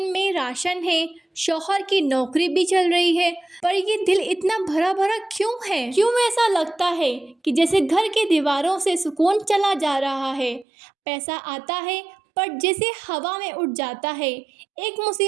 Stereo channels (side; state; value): left; drops out; at 10.7 s